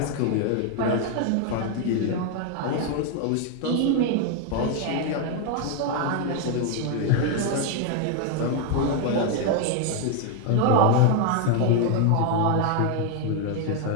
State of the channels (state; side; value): different; both; correlation 0.01